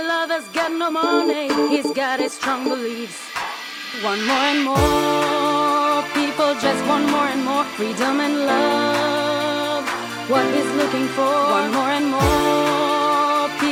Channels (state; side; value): identical; both; correlation 1.00